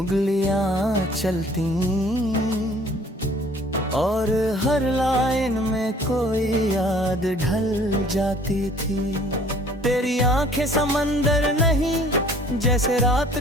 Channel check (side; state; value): both; normal; correlation 0.54